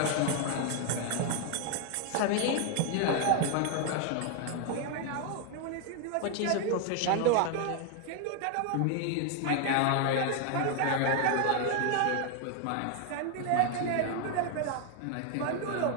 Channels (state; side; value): different; both; correlation 0.00